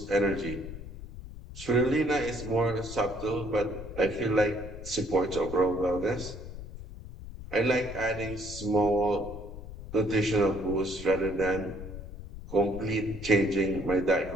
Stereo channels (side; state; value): left; noise; rumble, 12 dB below the sound